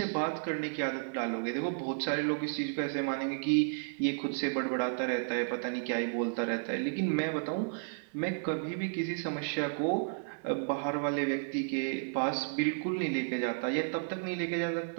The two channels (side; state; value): left; silent; 56 dB below the other